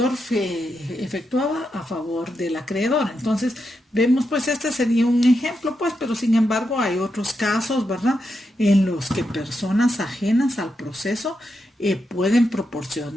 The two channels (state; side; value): normal; both; correlation 0.85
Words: efectuaba a favor del acreedor. Entonces, vemos, pues, este sería un ejemplo, pues, pero sin embargo hay otros casos, ¿verdad?, en los que personas ajenas al proceso pueden